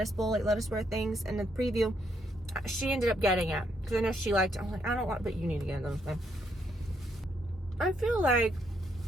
things in the preview. She ended up getting it, because I know she liked it. I'm like, I don't want, but you need to get those things. I feel like,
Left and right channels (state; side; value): normal; both; correlation 0.75